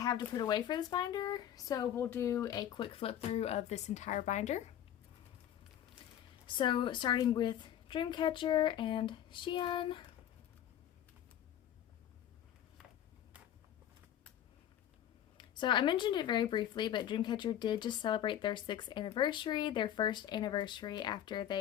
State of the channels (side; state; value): right; quieter; 10.9 dB